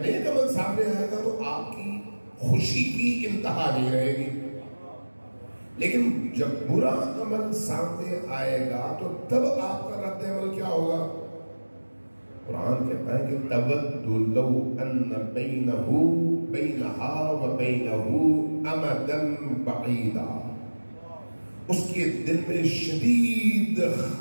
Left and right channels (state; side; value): inverted; both; correlation -1.00